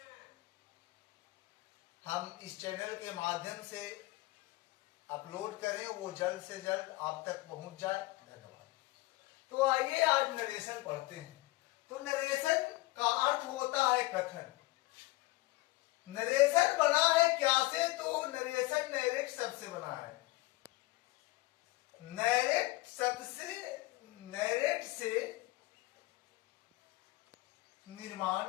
हम इस चैनल के माध्यम से अपलोड करें वो जल्द से जल्द आप तक पहुंच जाए। धन्यवाद। तो आइए आज नरेशन पढ़ते हैं। तो नरेशन का अर्थ होता है कथन। नरेशन बना है क्या से? तो नरेशन नैरेट शब्द से बना है। नैरेट शब्द से, नैरेट से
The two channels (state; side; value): quieter; right; 20.6 dB